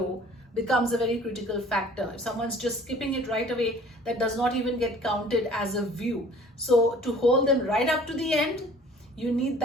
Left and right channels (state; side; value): normal; both; correlation 0.51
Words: becomes a very critical factor. If someone's just skipping it right away, that does not even get counted as a view. So to hold them right up to the end, you need